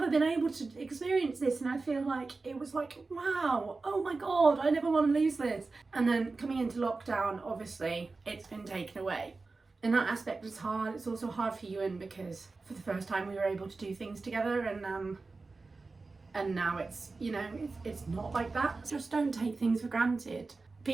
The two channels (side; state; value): left; quieter; 3.8 dB